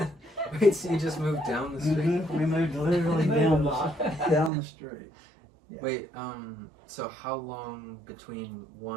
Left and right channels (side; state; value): left; drops out; at 4.5 s